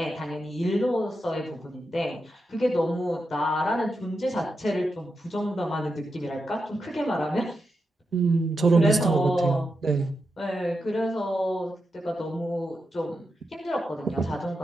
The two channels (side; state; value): both; normal; correlation 0.87